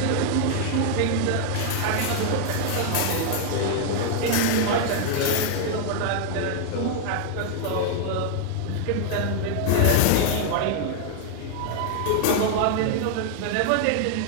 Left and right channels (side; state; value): both; different; correlation 0.00